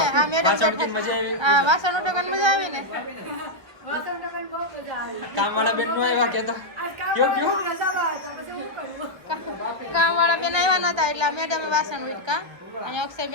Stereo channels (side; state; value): left; late; 1.6 ms